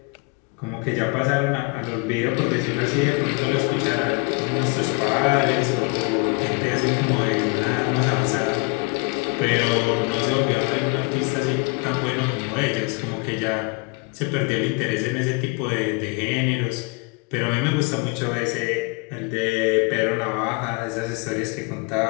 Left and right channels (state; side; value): quieter; right; 28.8 dB